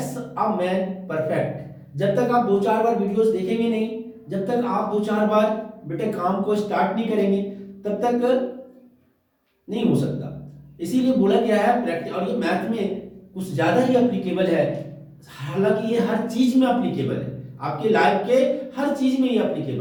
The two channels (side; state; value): both; identical; correlation 1.00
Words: a man perfect. जब तक आप दो चार बार वीडियोस देखेंगे नहीं, जब तक आप दो चार बार बेटे काम को स्टार्ट नहीं करेंगे, तब तक नहीं हो सकता। इसीलिए बोला गया है प्रैक्टिस, और ये मैथ में कुछ ज्यादा ही अप्लीकेबल है। हालांकि ये हर चीज में अप्लीकेबल है, आपके लाइफ के हर चीज में ये